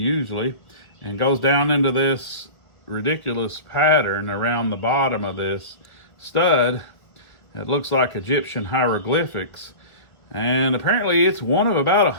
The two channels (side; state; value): right; late; 1.4 ms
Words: and goes down into this ridiculous pattern around the bottom of this stud. It looks like Egyptian hieroglyphics, and apparently it's one of about